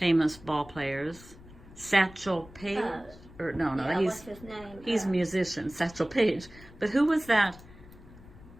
ball players. Satchel Paige? Or no, Yeah, he's what's his name? he's a musician. Satchel Paige. But who was that?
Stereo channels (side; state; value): left; noise; rumble, 20 dB below the sound